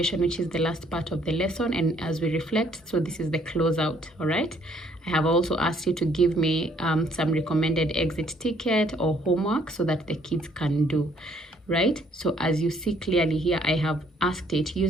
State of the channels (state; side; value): normal; both; correlation 0.65